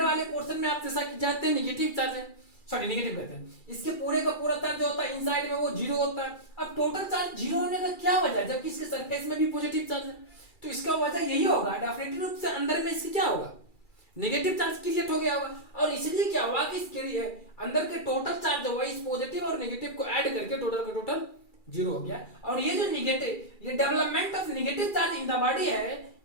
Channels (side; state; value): right; late; 2.4 ms